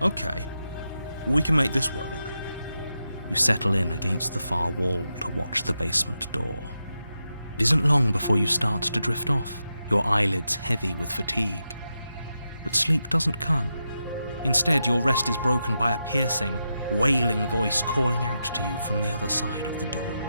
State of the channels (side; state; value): both; inverted; correlation -0.87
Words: we can make this work. You settle in against the far wall to watch the basement door. It isn't long before you start to drift off, your eyelids heavy with fatigue. But sleep doesn't come. Instead, your rest is broken by a piercing, wailing voice calling out to you from the other side of the door.